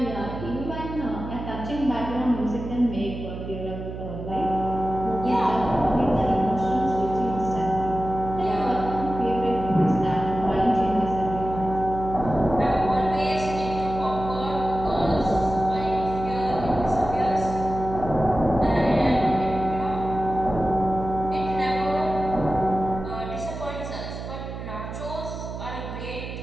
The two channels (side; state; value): right; noise; hum, 8 dB below the sound